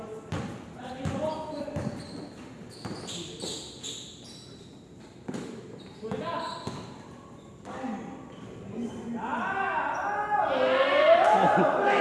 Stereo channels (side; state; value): both; identical; correlation 1.00